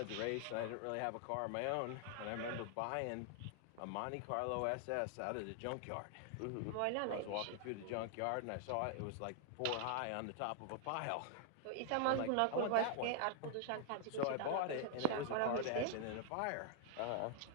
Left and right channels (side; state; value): both; different; correlation 0.00